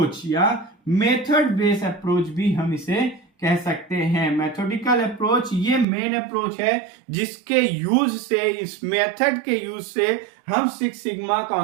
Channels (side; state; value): left; drops out; at 5.9 s